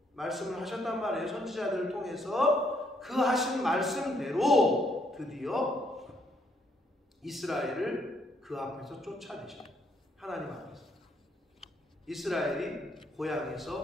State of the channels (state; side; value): normal; both; correlation 0.71